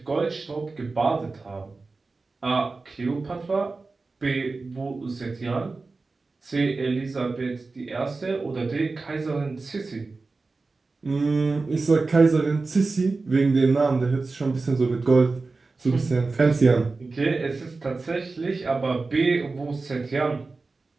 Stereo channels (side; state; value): left; quieter; 3.8 dB